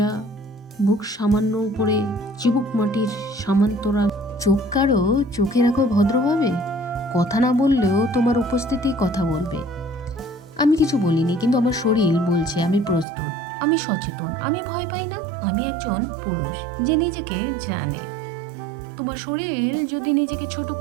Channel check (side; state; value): left; drops out; at 13.1 s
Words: বুক সামান্য উপরে, চিবুক মাটির সমান্তরাল, চোখ কারো চোখে রাখো ভদ্রভাবে। কথা না বললেও তোমার উপস্থিতি কথা বলবে। আমি কিছু বলিনি, কিন্তু আমার শরীর বলছে আমি প্রস্তুত, আমি সচেতন, আমি ভয় পাই না, আমি একজন পুরুষ যে নিজেকে জানে। তোমার শরীর যদি নিজেকে ছোট